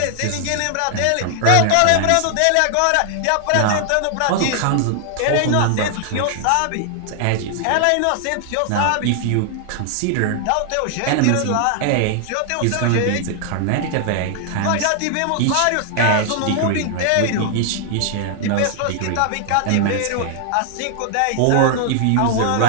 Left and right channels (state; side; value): different; both; correlation 0.00